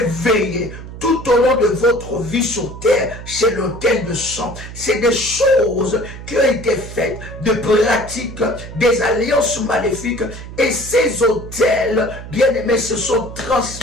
veiller tout au long de votre vie sur terre, c'est l'autel de sang. C'est des choses qui ont été faites, de pratiques, des alliances maléfiques. Et ces autels, bien-aimés, se sont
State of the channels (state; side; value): noise; right; hum, 12 dB below the sound